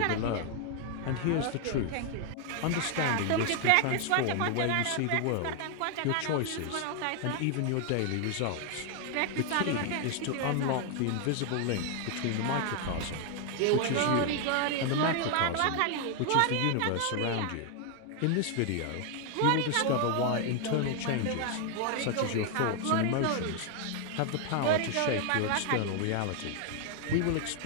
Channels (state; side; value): different; both; correlation 0.00